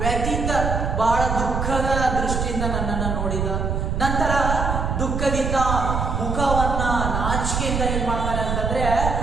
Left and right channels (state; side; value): noise; right; rumble, 1 dB below the sound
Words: ವ್ಯತೀತ ಬಹಳ ದುಃಖದ ದೃಷ್ಟಿಯಿಂದ ನನ್ನನ್ನ ನೋಡಿದ, ನಂತರ ದುಃಖದಿಂದ ಮುಖವನ್ನ ನಾಚಿಕೆಯಿಂದ ಏನ್ ಮಾಡ್ತಾನೆ ಅಂತಂದ್ರೆ